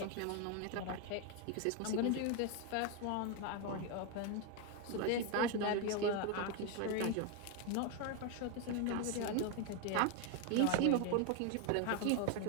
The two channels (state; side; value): different; both; correlation 0.01